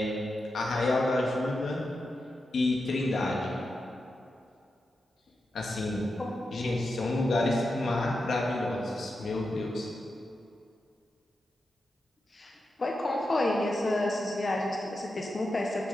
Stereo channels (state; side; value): normal; both; correlation 0.89